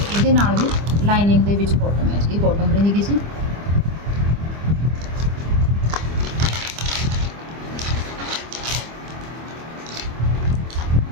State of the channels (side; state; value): left; late; 25 ms